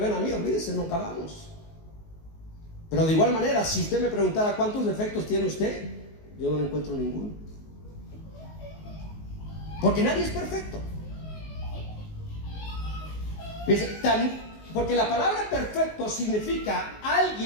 a mí, olvídese, no acabamos. Pero de igual manera, si usted me preguntara cuántos defectos tiene usted, yo no encuentro ninguno. Porque nadie es perfecto. Porque la palabra perfecto significa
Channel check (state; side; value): late; right; 19 ms